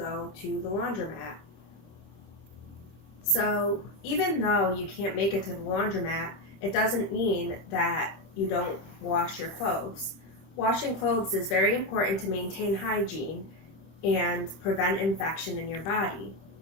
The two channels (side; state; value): right; late; 25 ms